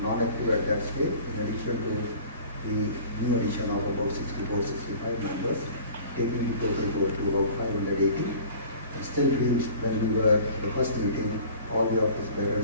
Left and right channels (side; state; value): both; inverted; correlation -0.46